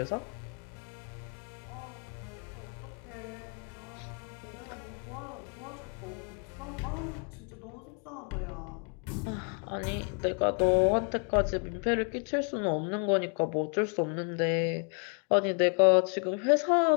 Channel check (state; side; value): quieter; right; 39.4 dB